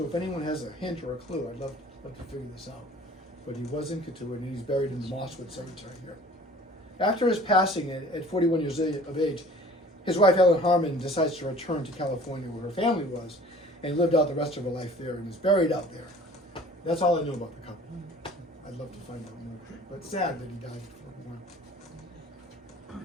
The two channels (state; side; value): normal; both; correlation 0.48